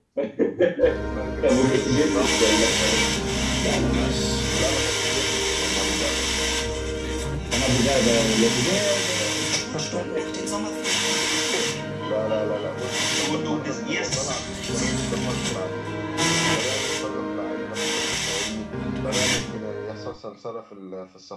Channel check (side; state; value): both; identical; correlation 1.00